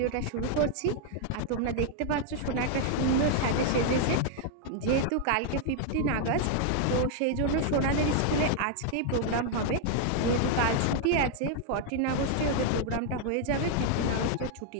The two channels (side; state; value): both; different; correlation 0.00